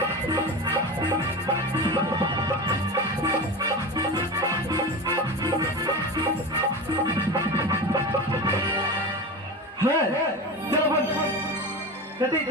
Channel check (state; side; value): normal; both; correlation 0.26